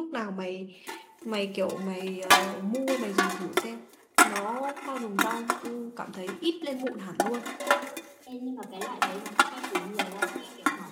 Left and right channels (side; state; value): both; identical; correlation 1.00